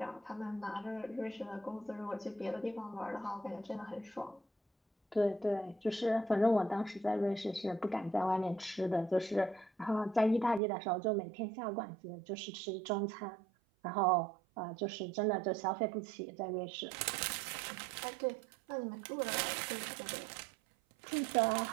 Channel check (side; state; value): left; drops out; at 10.6 s